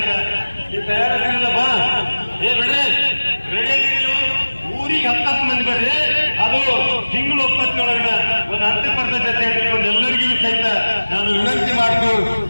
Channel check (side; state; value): both; inverted; correlation -1.00